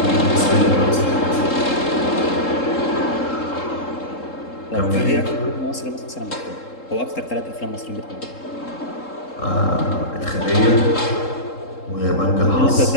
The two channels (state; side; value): late; right; 3.7 ms